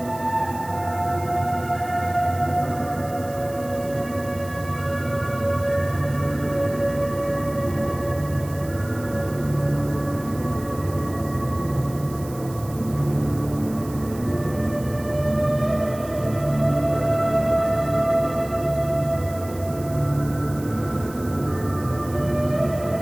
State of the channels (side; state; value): right; noise; hiss, 18 dB below the sound